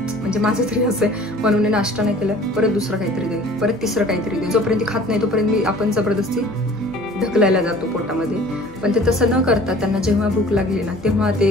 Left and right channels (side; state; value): left; noise; hum, 22 dB below the sound